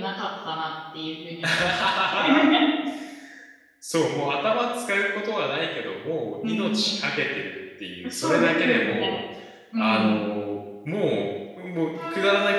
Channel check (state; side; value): identical; both; correlation 1.00